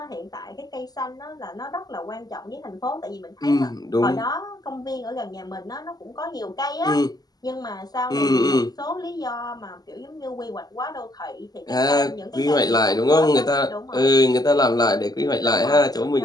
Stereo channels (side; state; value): right; late; 0.19 ms